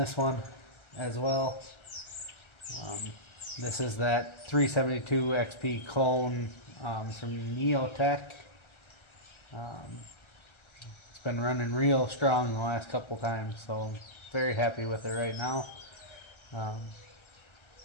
one as well. This is that 372 XP clone from Neotech. It's been running real strong the last couple times, so I'm very happy with it right now.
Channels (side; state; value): right; late; 1.3 ms